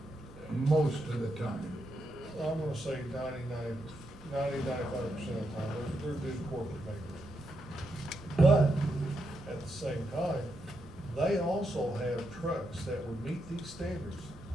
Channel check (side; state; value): both; normal; correlation 0.82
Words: most of the time. I'm gonna say 95% of the time, they're good corporate neighbors. But at the same time, they also have trucks that would meet these standards.